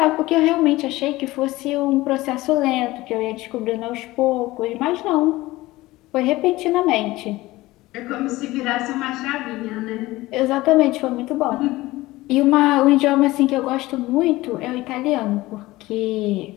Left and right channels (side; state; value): right; quieter; 18.7 dB